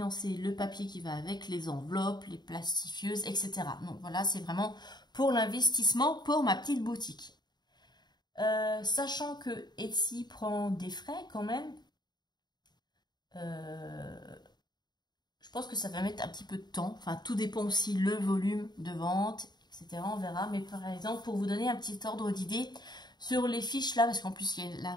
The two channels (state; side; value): late; right; 0.21 ms